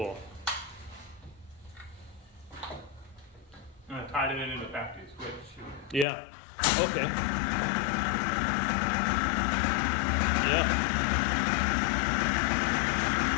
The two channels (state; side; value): drops out; right; at 6.1 s